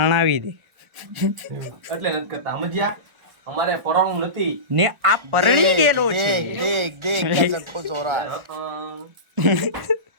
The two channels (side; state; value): left; late; 1.4 ms